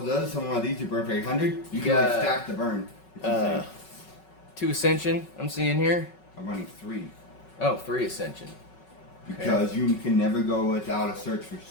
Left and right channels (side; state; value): right; late; 5.4 ms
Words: of those, summon one of these, you burn for 800. You can like stack the burn. 2 Ascension, I'm seeing here. I'm running 3. Oh, 3 Ascension. Because you can never go without a search for